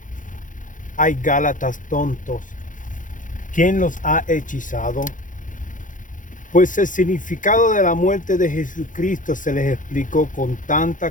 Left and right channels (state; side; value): late; right; 0.38 ms